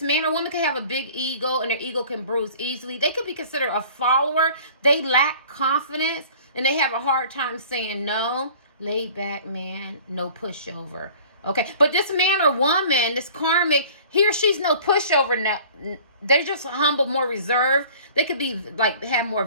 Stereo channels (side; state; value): both; inverted; correlation -0.47